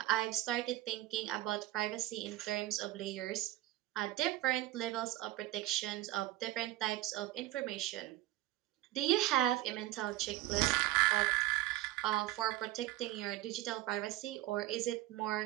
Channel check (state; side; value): quieter; left; 16.0 dB